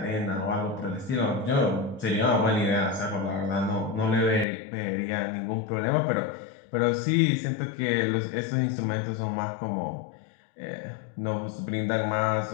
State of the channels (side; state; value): right; drops out; at 4.5 s